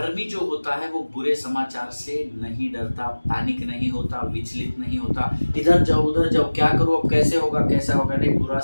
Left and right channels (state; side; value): inverted; both; correlation -1.00